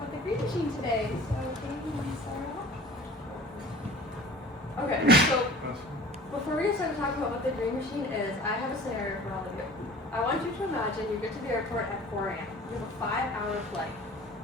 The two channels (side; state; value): both; normal; correlation 0.44